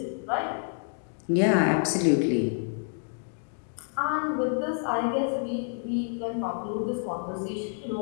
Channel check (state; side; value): silent; right; 59 dB below the other